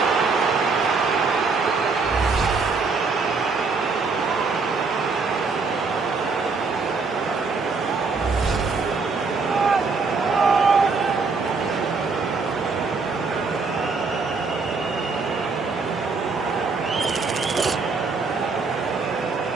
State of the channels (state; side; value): quieter; left; 4.5 dB